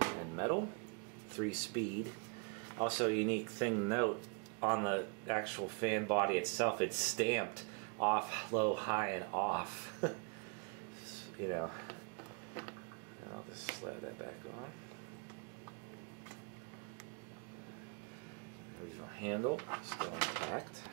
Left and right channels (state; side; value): quieter; left; 36.2 dB